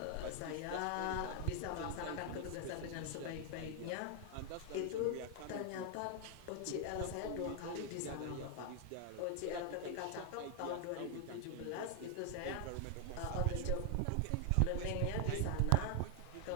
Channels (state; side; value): different; both; correlation 0.00